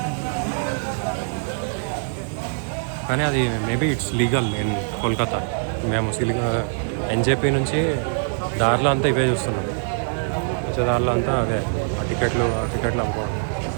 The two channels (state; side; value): silent; left; digital silence